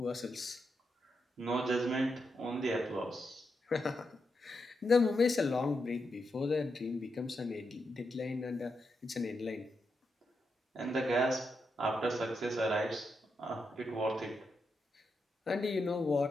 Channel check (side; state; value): both; normal; correlation 0.84